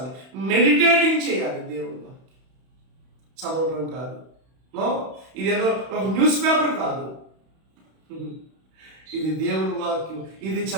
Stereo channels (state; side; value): late; left; 31 ms